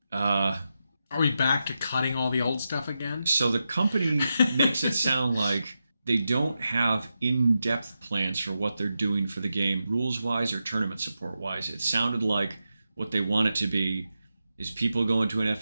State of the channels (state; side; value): inverted; both; correlation -0.89